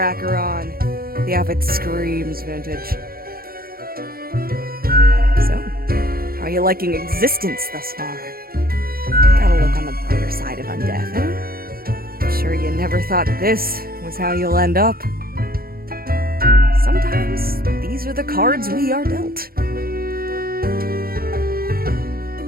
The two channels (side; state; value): left; late; 0.43 ms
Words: The outfit screams vintage. So, how are you liking existence thus far? Gotta look on the brighter side of undeath, eh? I'm sure you never thought this was how you'll end up. Sometimes these are the cards we are dealt.